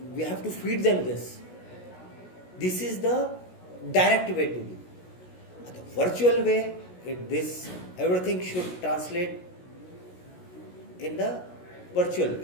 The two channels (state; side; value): late; right; 16 ms